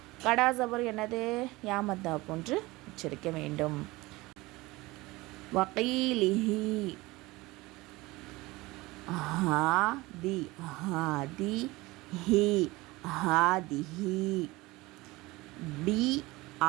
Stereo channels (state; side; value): quieter; left; 21.1 dB